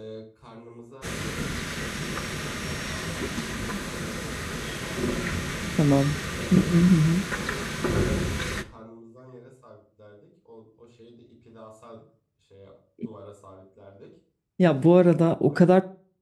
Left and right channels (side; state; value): both; identical; correlation 1.00